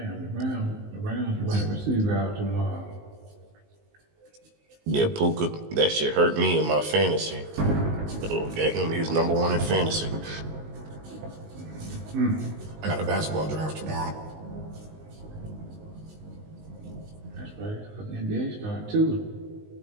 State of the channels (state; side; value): late; left; 19 ms